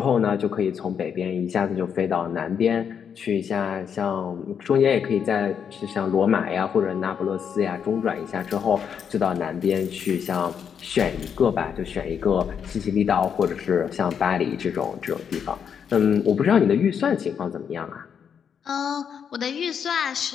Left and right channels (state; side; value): quieter; right; 7.5 dB